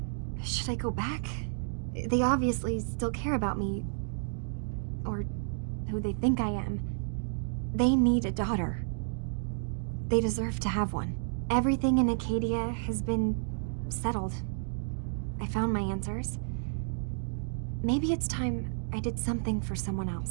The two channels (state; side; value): silent; left; digital silence